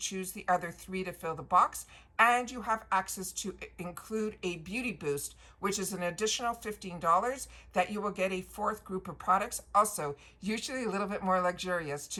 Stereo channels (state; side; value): identical; both; correlation 1.00